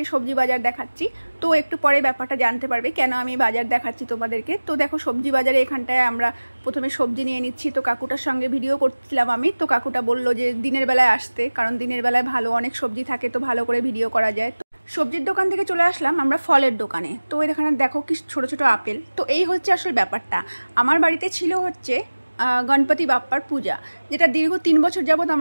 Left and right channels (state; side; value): inverted; both; correlation -1.00